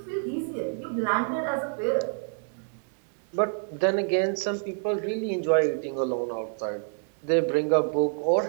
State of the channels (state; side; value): silent; left; 60 dB below the other